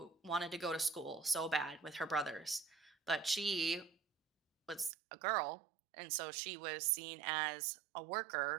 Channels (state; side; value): drops out; left; at 4.9 s